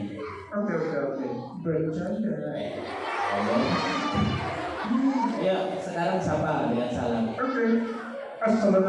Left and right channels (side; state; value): both; identical; correlation 1.00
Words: Oke. Bercanda. Allah. Ya, sekarang sapa dengan salam. Oke.